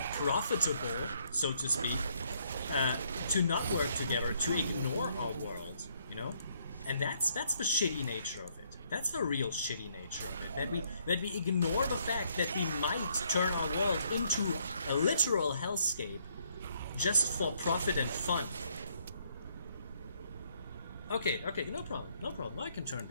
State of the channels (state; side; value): inverted; both; correlation -0.70